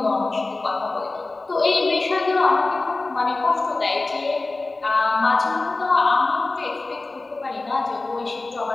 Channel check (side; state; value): right; quieter; 3.3 dB